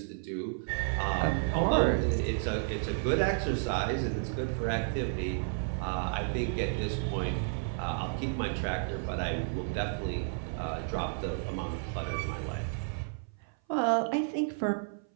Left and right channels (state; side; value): silent; left; 56 dB below the other